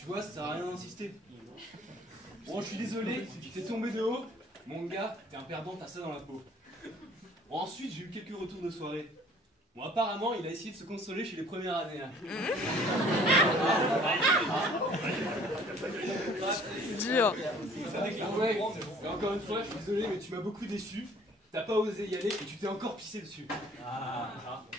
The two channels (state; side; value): normal; both; correlation 0.54